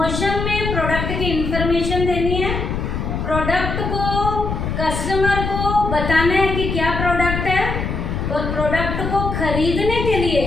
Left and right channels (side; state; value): left; noise; rumble, 3 dB below the sound